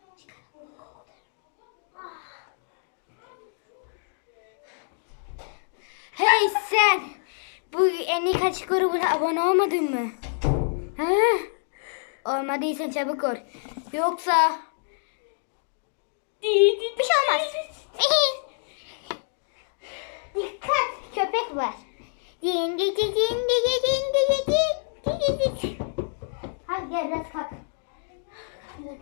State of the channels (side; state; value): right; silent; digital silence